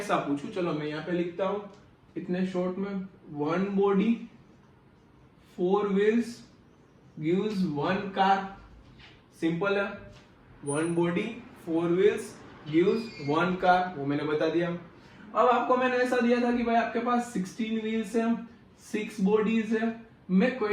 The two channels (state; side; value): identical; both; correlation 1.00